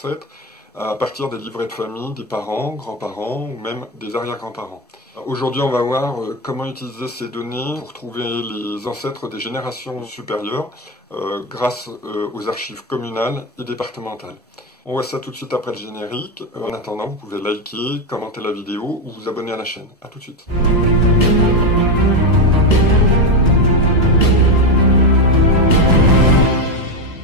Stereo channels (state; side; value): normal; both; correlation 0.11